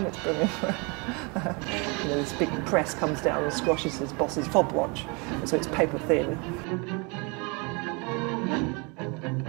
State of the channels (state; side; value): quieter; left; 30.7 dB